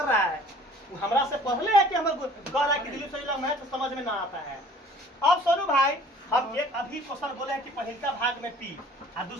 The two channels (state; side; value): normal; both; correlation 0.52